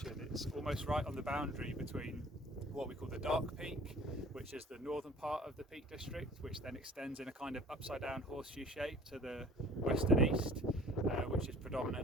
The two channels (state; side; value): normal; both; correlation 0.48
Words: It's almost right on the boundary between what we call the Dark Peak, which is the northern part of the Peak District, which then extends in a kind of upside down horseshoe shape to the west and east, which is